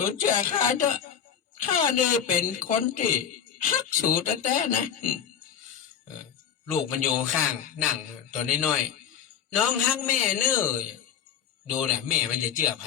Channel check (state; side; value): quieter; right; 8.3 dB